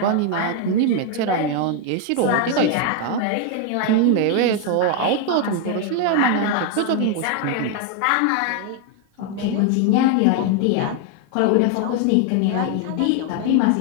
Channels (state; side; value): different; both; correlation 0.01